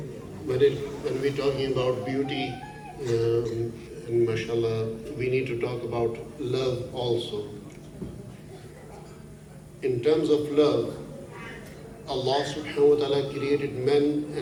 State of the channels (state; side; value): identical; both; correlation 1.00